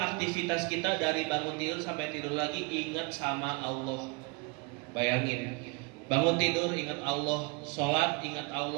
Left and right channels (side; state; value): left; quieter; 28.8 dB